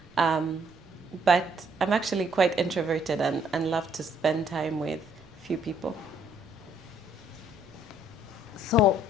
Um, but I'm actually quite introverted and love to spend time with few people. So,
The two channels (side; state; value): right; noise; rumble, 27 dB below the sound